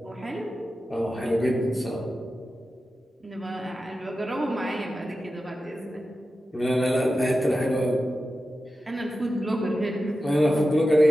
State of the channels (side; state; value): both; normal; correlation 0.92